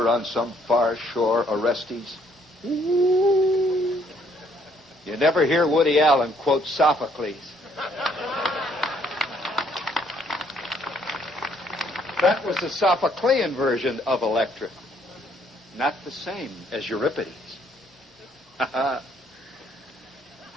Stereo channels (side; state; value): both; normal; correlation 0.66